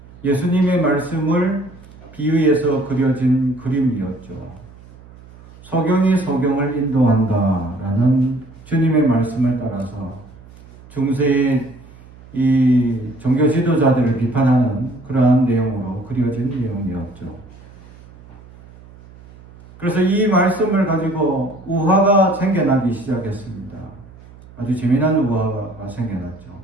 예수님의 말씀을 비유해서 그려진 그림이었죠. 소경이 소경을 인도한다라는 주님의 말씀을 따라서 중세의 이 종교 지도자들을 비판하는 그러한 내용으로 그려진 내용이었죠. 그래서 이 말씀을 가지고 우화가 생겨나기 시작했습니다. 아주 재미난 우화가 생겨났죠.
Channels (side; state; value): right; noise; hum, 22 dB below the sound